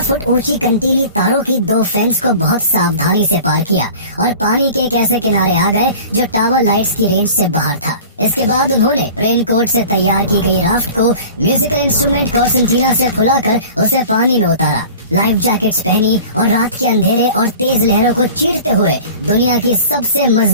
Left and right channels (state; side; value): inverted; both; correlation -0.41